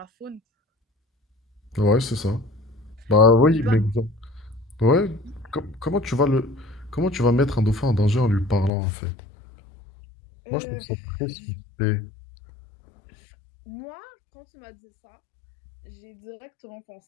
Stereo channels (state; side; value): drops out; right; at 8.7 s